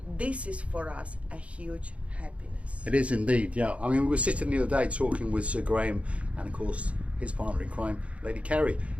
This is for us a huge happiness. It is indeed, yeah. I mean, we were sitting the other day talking with Sir Graham and of course his partner in crime, Lady Kerry,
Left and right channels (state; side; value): late; left; 0.063 ms